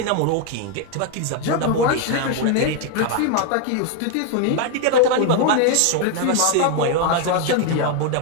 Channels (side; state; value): both; different; correlation 0.01